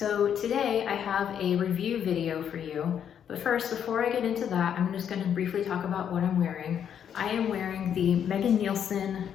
today I have a review video for you, but first before I get into that I'm just going to briefly talk about what I'm wearing. I am wearing the Megan Nielsen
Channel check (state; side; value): quieter; right; 8.7 dB